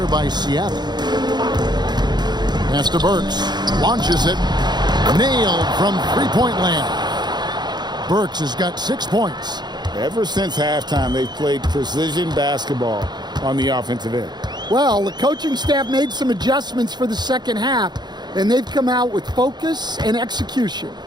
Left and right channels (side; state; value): left; late; 0.21 ms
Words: by Seattle. Pass to Burks. Launches it. Nailed from three-point land. Burks has got 6 points. Ever since halftime, they've played precision basketball on the offensive end. Well, the coaching staff made some adjustments for the second half, and they've come out with focus and execution.